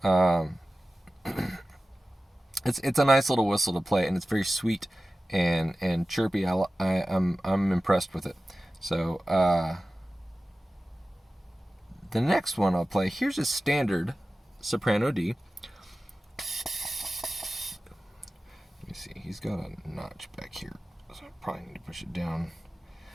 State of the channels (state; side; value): normal; both; correlation 0.96